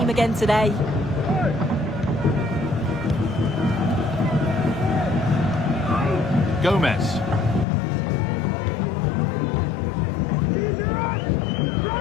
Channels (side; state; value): right; drops out; at 7.7 s